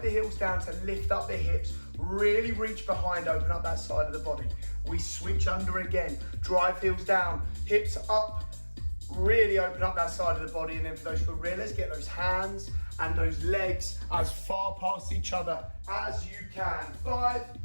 heels down to lift up the hips. Really reach behind, open up that side of the body. We switch under again. Drive heels down, hips up. Really open up that side of the body. And then for those gorillas, get those hands and those legs as far past each other as you can. 5,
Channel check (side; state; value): both; inverted; correlation -1.00